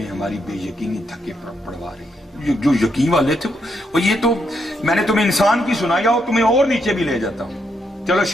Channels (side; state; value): both; normal; correlation 0.78